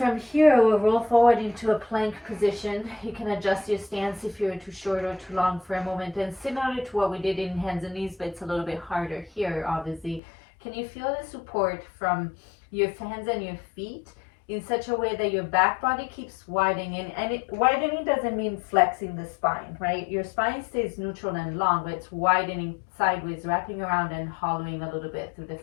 here, we'll roll forward into a plank position. You can adjust your stance if you're too short or too long for a moment. And similar to what we did in hands and knees, but it's a little bit harder here, obviously. Can you feel the support from your hands and your feet in such a way that your back body keeps widening? And widening doesn't mean flexing the spine, right? Your spine stays neutral and long, but it's widening sideways, wrapping around and hollowing a little bit through the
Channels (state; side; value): drops out; right; at 10.2 s